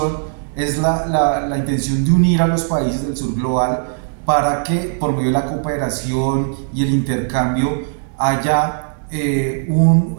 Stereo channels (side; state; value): left; silent; digital silence